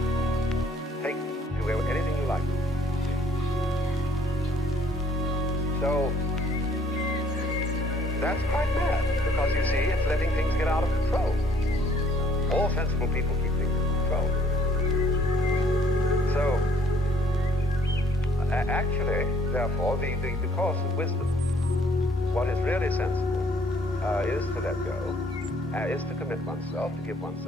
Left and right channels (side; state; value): both; normal; correlation 0.62